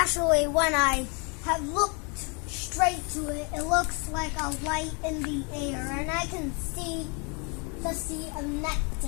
when I have looked straight to it, it looks like a light in the air, and I can see the sea of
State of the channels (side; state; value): right; quieter; 33.6 dB